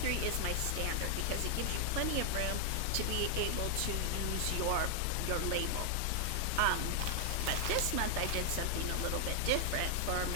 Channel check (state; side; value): different; both; correlation 0.00